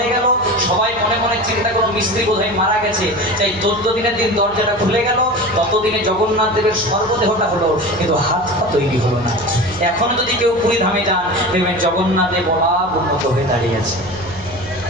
গেল সবাই মনে মনে চিন্তা করলো মিস্ত্রি বোধহয় মারা গেছে তাই 14 দিনের দিন দরজাটা খুলে গেল ততদিনে জগন্নাথ দেবের সর্বদেহটা হলো কিন্তু হাতটা তৈরি হলো না এখন যদি কেউ পুরী ধামে যান দেখবেন জগন্নাথ দেব অলাভ উন্নত হয়ে দাঁড়িয়ে আছে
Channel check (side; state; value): right; noise; hum, 21 dB below the sound